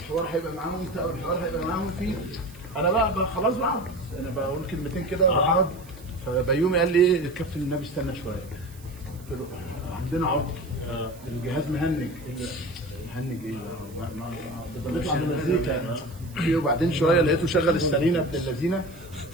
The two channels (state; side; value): noise; right; hiss, 23 dB below the sound